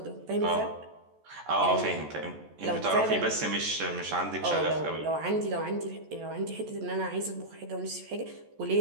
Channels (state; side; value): late; left; 14 ms